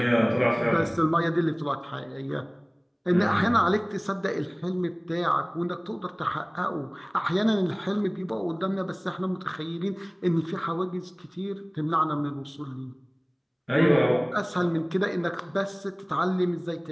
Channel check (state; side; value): identical; both; correlation 1.00